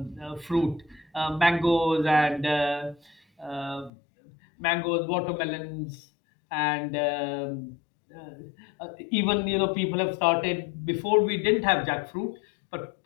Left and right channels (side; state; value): right; drops out; at 3.9 s